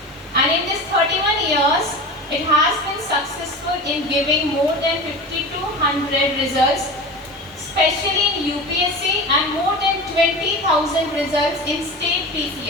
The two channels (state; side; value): normal; both; correlation 0.30